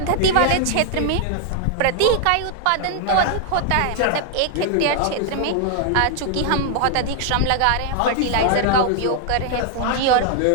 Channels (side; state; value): both; different; correlation 0.00